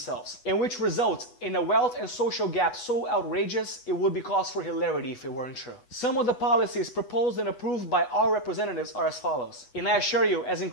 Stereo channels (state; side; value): late; right; 8.1 ms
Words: and which result in a wealth and social gap so outrageous it would be cause for hilarity if it weren't true. Some of the policies proposed and approved by our representatives are as follows. And I assure you, as